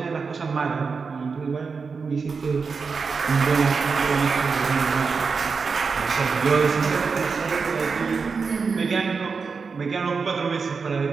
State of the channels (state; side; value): quieter; left; 5.1 dB